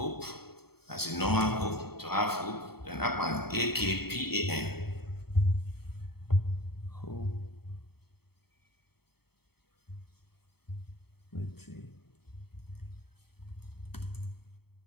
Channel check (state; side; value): late; right; 0.96 ms